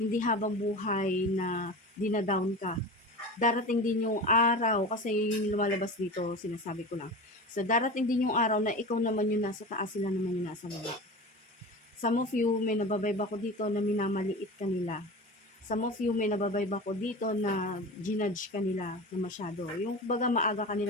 habang buhay na dinadown ka. Darating din yung araw, kasi yun yung lumalabas dito, sinasabi ko lang. So, darating din yung araw na ikaw naman yung nasa taas, sila naman yung nasa baba. Some of you, may nababibe ako dito na minamaliit ka nila. Some of you, may nababibe ako dito na ginudge ka nila na masyado. Yung baga maaga ka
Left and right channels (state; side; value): normal; both; correlation 0.31